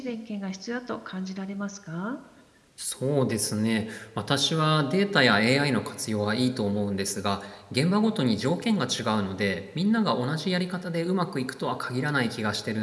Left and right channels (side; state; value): both; identical; correlation 1.00